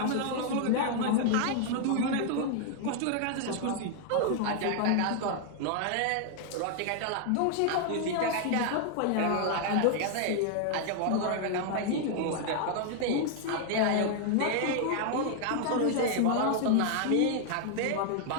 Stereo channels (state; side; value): different; both; correlation 0.00